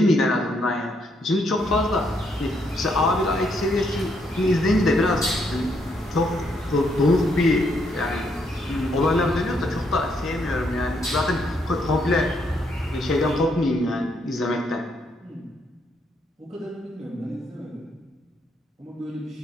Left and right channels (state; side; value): normal; both; correlation 0.74